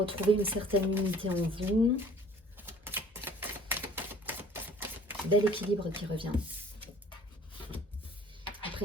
une certaine unité en vous. Bel équilibre qui revient. Après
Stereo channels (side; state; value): both; normal; correlation 0.52